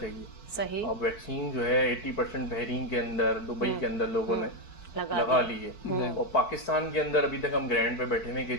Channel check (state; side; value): late; right; 4.6 ms